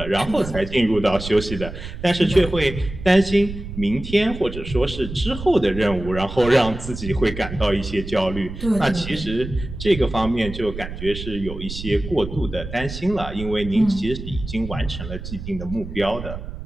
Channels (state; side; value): noise; right; rumble, 9 dB below the sound